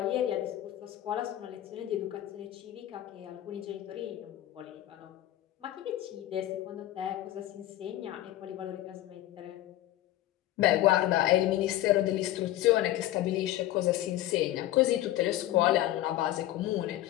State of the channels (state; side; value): quieter; right; 14.2 dB